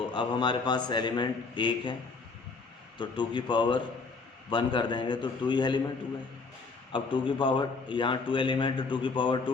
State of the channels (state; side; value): quieter; right; 4.3 dB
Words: अब हमारे पास एलिमेंट 1 है, तो 2 की पावर 1 कर देंगे तो 2 ही एलिमेंट हुए। अब 2 की पावर, यहाँ 2 एलिमेंट, 2 की पावर